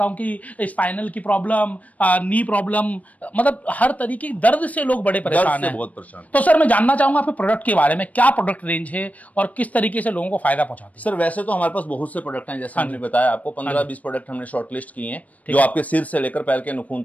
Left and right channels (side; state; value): right; late; 0.070 ms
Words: कि स्पाइनल की प्रॉब्लम, नी प्रॉब्लम, मतलब हर तरीके की दर्द से लोग बड़े परेशान हैं। बहुत परेशान। तो सर मैं जानना चाहूंगा आपके प्रोडक्ट के बारे में, क्या प्रोडक्ट रेंज है और किस तरीके से लोगों को फायदा पहुंचाते हैं? सर वैसे तो हमारे पास बहुत से प्रोडक्ट हैं, जैसे हमने बताया आपको 15-20 प्रोडक्ट हमने शॉर्टलिस्ट किए हैं, जो आपके सिर से लेकर पैर के नाखून